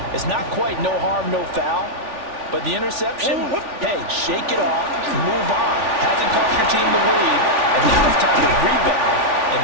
it's not quite no harm, no foul. But the interception, hey, shake it off, move on. Hasn't cost your team the lead, and now it's time to rebound. And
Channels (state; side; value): late; left; 3.4 ms